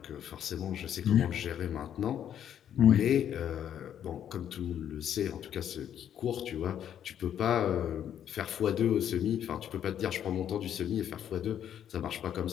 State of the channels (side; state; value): right; quieter; 9.8 dB